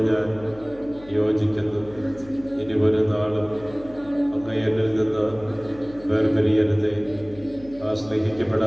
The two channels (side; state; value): left; noise; hum, 21 dB below the sound